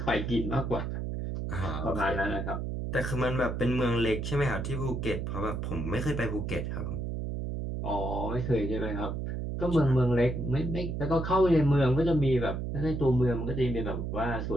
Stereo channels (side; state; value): right; noise; hum, 3 dB below the sound